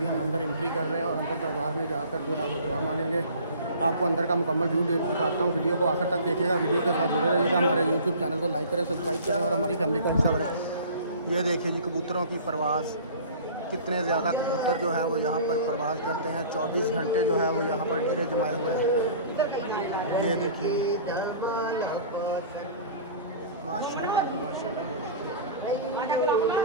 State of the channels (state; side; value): inverted; both; correlation -0.43